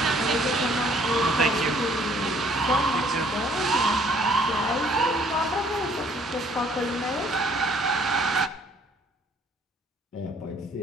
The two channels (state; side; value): normal; both; correlation 0.60